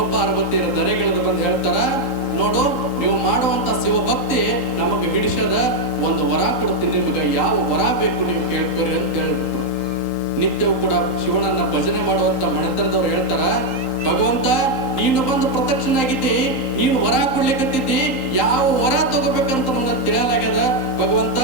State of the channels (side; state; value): left; late; 3.8 ms